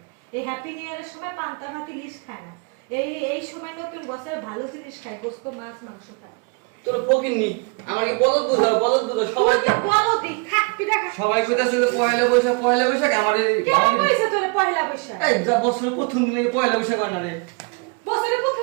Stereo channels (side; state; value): left; quieter; 32.1 dB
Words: এই হ্যাপি নিউ ইয়ারের সময় পান্তা ভাত ইলিশ খায় না। এই সময় নতুন বছরে ভালো জিনিস খায়, গোশত মাছ মাংস খায়। তোর ফকির নি আমার কি বলদ বুঝাও সবাই তুই তো বলো দি খাক পিঠা খা। সবাই কইতাছে যে পয়লা বৈশাখ আমারে কেন কইছে তোরে পয়লা বৈশাখ? এই যা বছরের প্রথম দিনে পয়লা বৈশাখ হয় না রে বছরের